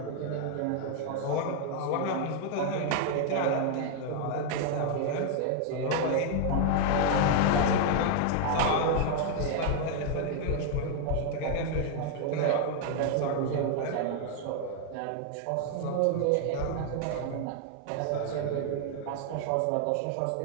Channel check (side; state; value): both; different; correlation 0.00